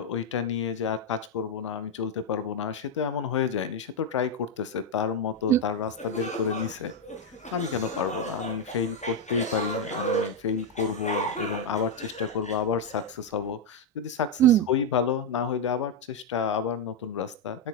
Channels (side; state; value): both; normal; correlation 0.03